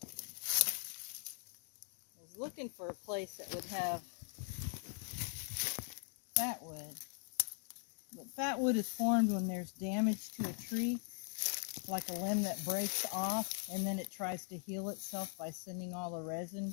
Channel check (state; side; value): silent; right; 51 dB below the other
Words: I was looking for a place that would have fat wood. But fat wood is formed when there's damage to a tree, like a limb that breaks off, and then it tries to heal itself by sending all the resin